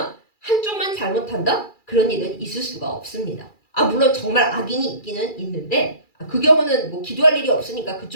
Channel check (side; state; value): right; late; 2.3 ms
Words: 한쪽만 잘못한다? 그런 일은 있을 수가 없습니다. 물론 정말 악인이 있기는 있는데 그 경우는 뭐 기도할 일이 없으니까